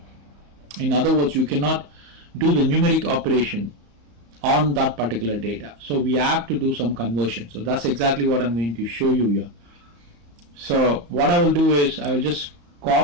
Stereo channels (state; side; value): late; left; 34 ms